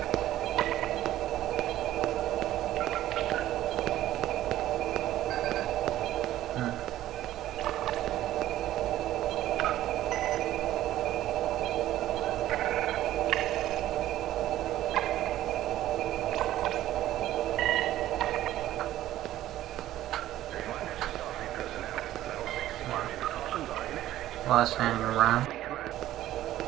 While standing around,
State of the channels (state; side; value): quieter; left; 13.7 dB